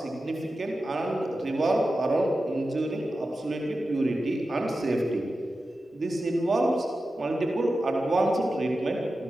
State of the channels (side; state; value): both; normal; correlation 0.92